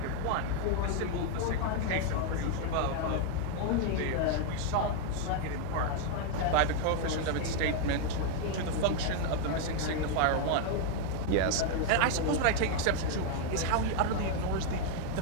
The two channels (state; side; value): different; both; correlation 0.00